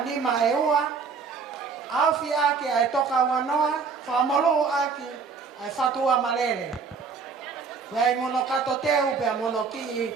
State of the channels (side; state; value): left; quieter; 5.3 dB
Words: e ua, aufi aki ai toka wanoa, whamolo aki ai fatua malele. Wei mono kato teu pea mono ki